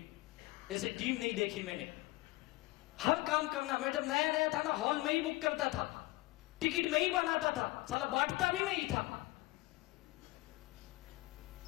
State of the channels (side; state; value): right; quieter; 21.2 dB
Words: ऐसी टीम नहीं देखी मैंने। हर काम करना। मैं जब नया नया था ना, हॉल में ही बुक करता था, टिकट में ही बनाता था, साला बांटता भी मैं ही था।